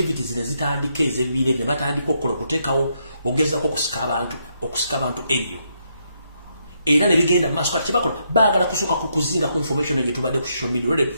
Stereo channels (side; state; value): both; inverted; correlation -0.77